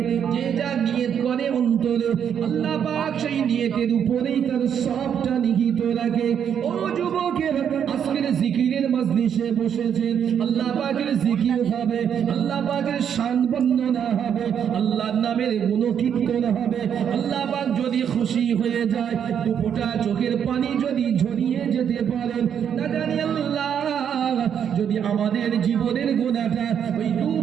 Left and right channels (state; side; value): quieter; left; 8.4 dB